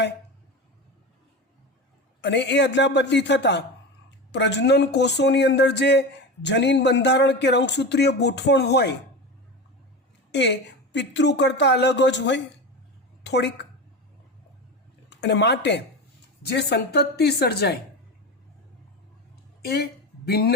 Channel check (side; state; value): both; normal; correlation 0.25